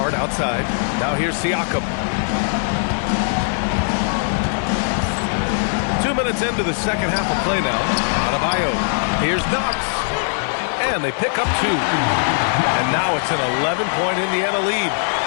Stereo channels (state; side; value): silent; right; digital silence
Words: outside. Now here's Siakam. 2 minutes into the second half of play now. Adebayo. Here's Knox. And they pick up 2. And now it's an 11-point Indiana lead.